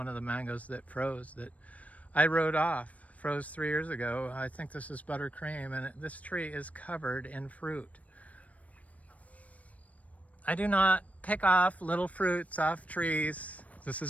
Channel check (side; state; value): right; late; 0.068 ms